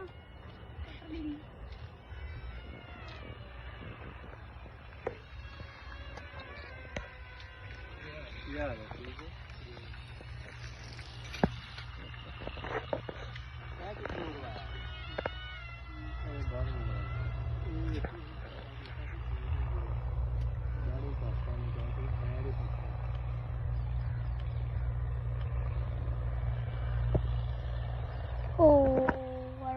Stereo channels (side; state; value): both; identical; correlation 1.00